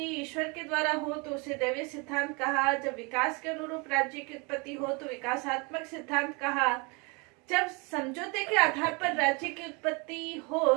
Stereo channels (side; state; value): left; quieter; 29.8 dB